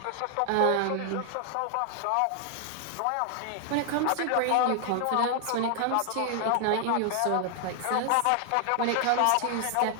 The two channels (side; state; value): both; different; correlation 0.00